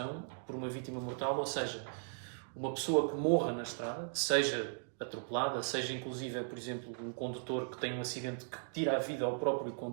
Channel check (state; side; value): silent; left; digital silence